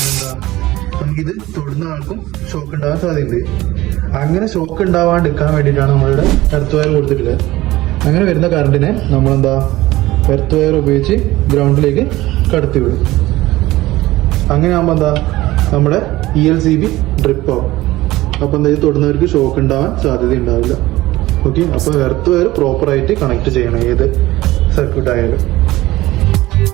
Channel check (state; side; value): quieter; left; 17.6 dB